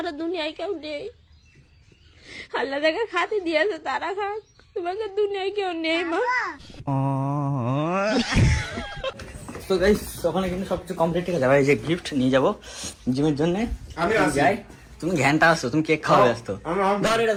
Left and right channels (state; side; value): identical; both; correlation 1.00